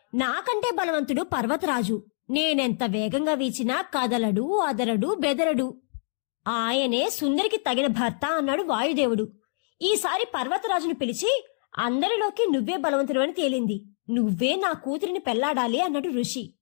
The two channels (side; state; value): right; silent; digital silence